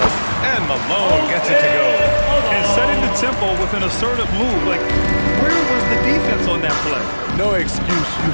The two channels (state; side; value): inverted; both; correlation -1.00